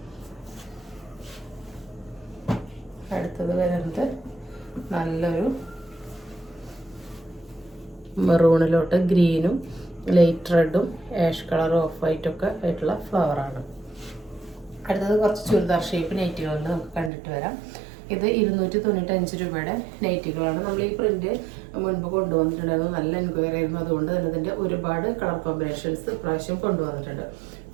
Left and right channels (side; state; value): left; drops out; at 17.1 s